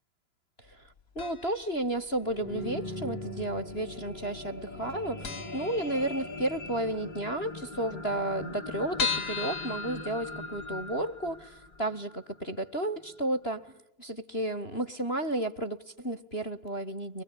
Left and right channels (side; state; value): right; late; 2.9 ms